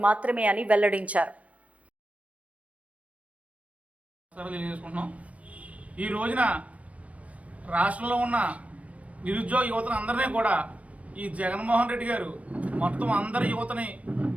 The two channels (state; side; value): late; left; 0.066 ms